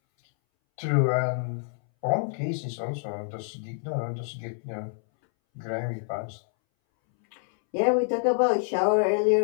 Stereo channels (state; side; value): silent; right; 60 dB below the other